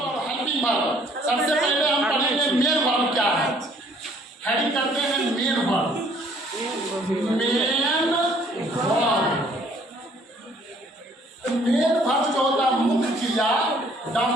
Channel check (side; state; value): both; normal; correlation 0.60